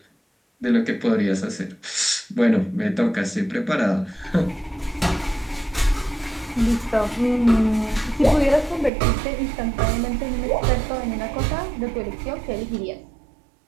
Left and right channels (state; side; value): drops out; left; at 8.9 s